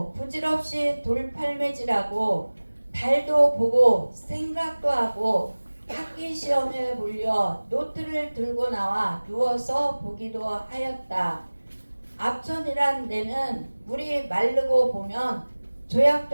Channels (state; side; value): inverted; both; correlation -1.00